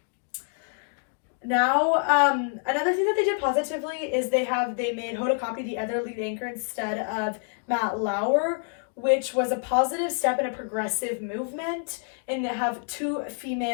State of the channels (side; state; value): right; silent; 60 dB below the other